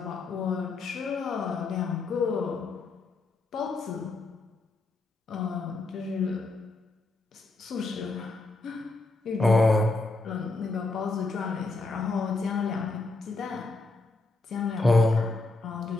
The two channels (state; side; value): quieter; right; 3.4 dB